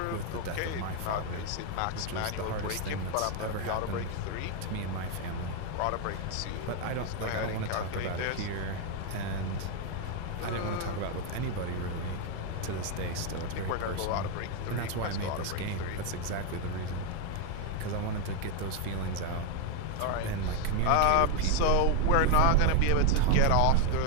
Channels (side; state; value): both; different; correlation 0.01